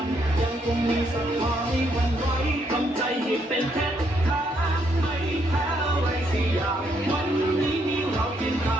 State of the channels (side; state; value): both; normal; correlation 0.74